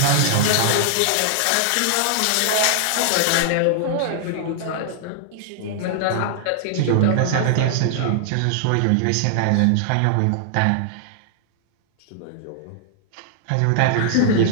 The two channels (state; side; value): different; both; correlation -0.01